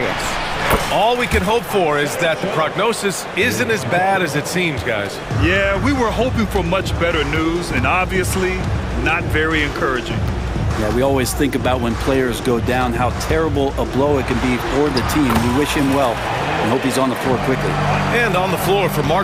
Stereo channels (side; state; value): both; identical; correlation 1.00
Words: All we can hope for is that the prognosis isn't as bad as it seems, guys. Yeah, we were hoping for much better news, and obviously not very encouraging. Yeah, we always think about when players go down, how terrible a blow it can be for the team. We wish him well and hope he's on the floor quickly. And on the floor for